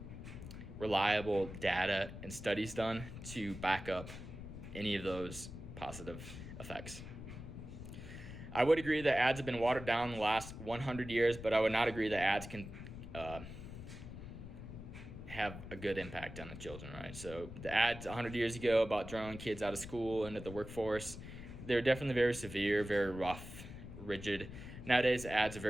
reliable data and studies done to back up any of those positive effects. I would agree that ads have been watered down in the last 100 years, but I would not agree that ads can have a good impact on the children, right? So the ads 100 years ago about drawing kids out of school into the workforce, they're definitely very severe, very rough, rigid. Nowadays, ads are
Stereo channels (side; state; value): left; noise; rumble, 11 dB below the sound